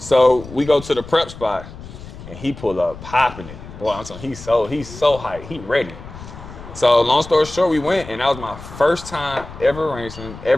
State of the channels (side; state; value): left; noise; rumble, 15 dB below the sound